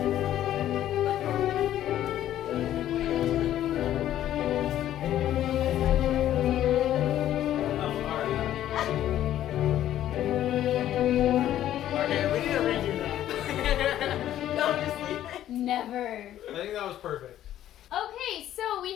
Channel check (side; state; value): right; quieter; 12.2 dB